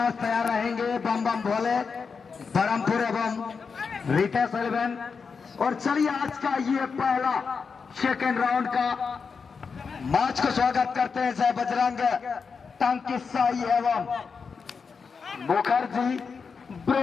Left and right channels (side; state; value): right; quieter; 5.4 dB